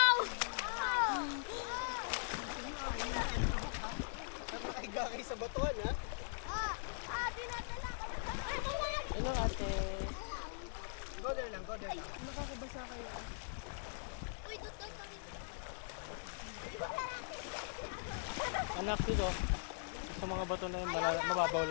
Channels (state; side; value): silent; right; digital silence